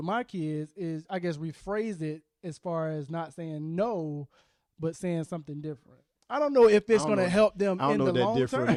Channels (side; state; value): both; identical; correlation 1.00